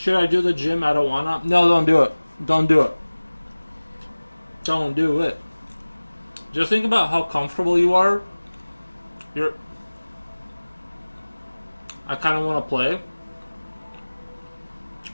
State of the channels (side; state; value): both; inverted; correlation -1.00